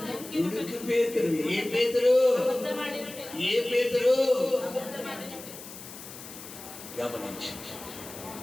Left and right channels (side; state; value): left; noise; hiss, 14 dB below the sound